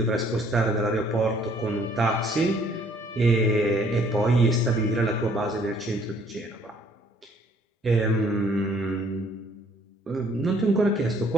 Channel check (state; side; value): normal; both; correlation 0.61